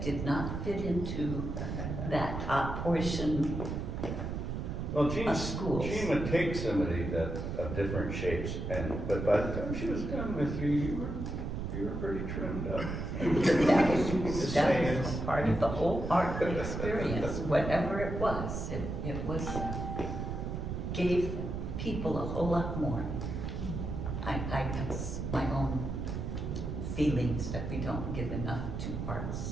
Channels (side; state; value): right; noise; rumble, 4 dB below the sound